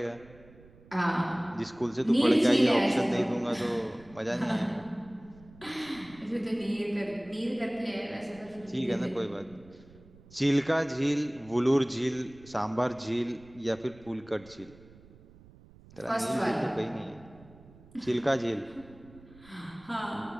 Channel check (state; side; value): noise; right; rumble, 23 dB below the sound